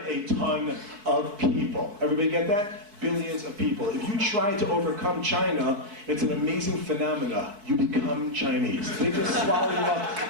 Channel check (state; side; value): late; left; 4.6 ms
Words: a ton of people. Everybody get that? Billions of people. If you try to overcome China, it's an amazing phenomena. You become Chinese. They just swallow you up.